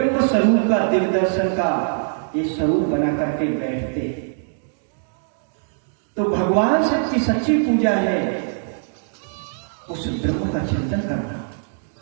स्वरूप का दिव्य दर्शन का ये स्वरूप बना करके बैठते। तो भगवान शिव की सच्ची पूजा है उस ब्रह्म का चिंतन करना।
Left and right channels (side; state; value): left; silent; digital silence